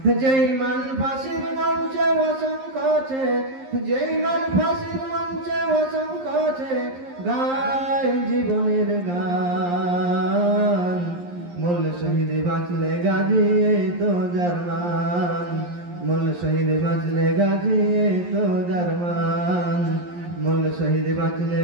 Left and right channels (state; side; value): late; left; 11 ms